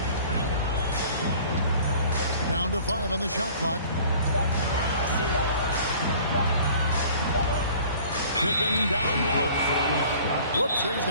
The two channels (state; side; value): inverted; both; correlation -0.49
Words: Down to 5 on the shot clock. Pippen down low. Whoops, there's